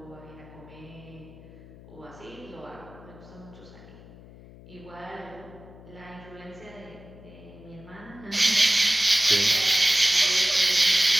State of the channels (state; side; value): noise; left; hum, 19 dB below the sound